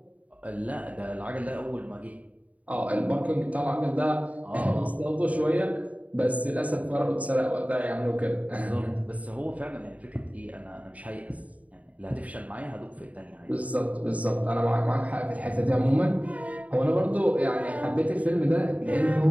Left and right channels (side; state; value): left; late; 0.069 ms